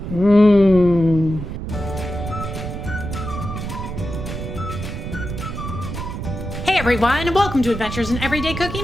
Mmm. Hey everyone, welcome to Adventures in Everyday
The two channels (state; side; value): noise; right; rumble, 6 dB below the sound